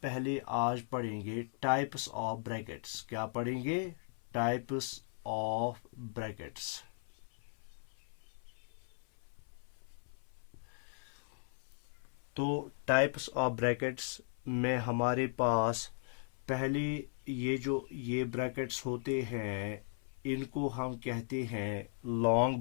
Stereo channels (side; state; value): right; silent; 53 dB below the other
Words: पहले आज पढ़ेंगे टाइप्स ऑफ ब्रैकेट्स। क्या पढ़ेंगे? Types of brackets. तो टाइप्स ऑफ ब्रैकेट्स में हमारे पास पहले ये ब्रैकेट्स होते हैं, इनको हम कहते हैं लॉन्ग